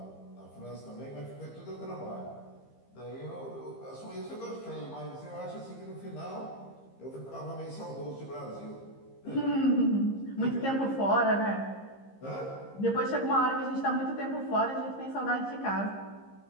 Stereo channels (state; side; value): late; right; 15 ms